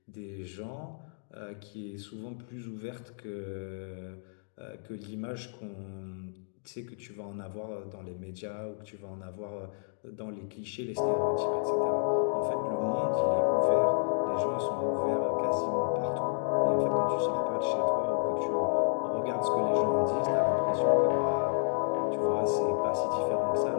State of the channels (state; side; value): silent; right; digital silence